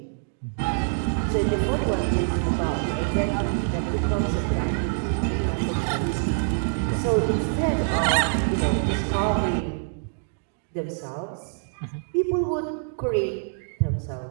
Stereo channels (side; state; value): left; silent; digital silence